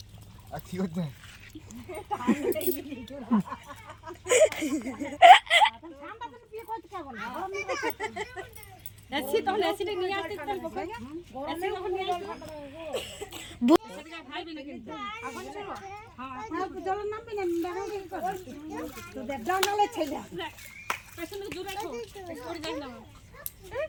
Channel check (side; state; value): both; identical; correlation 1.00